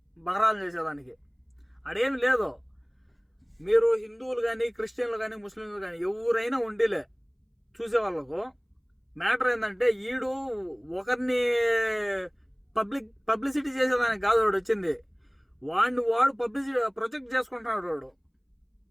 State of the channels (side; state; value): both; identical; correlation 1.00